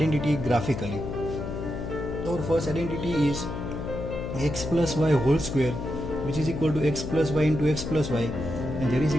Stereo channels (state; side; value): noise; left; hum, 5 dB below the sound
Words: graphically. Our first identity is x plus y whole square, which is equal to x plus y into x plus y, and that is